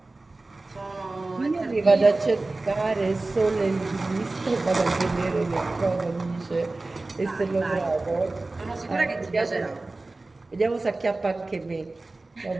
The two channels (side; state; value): left; quieter; 3.2 dB